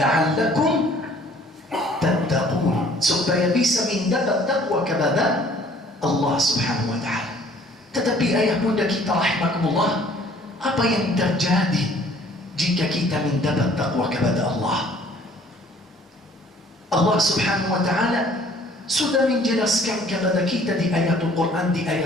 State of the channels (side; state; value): both; normal; correlation 0.56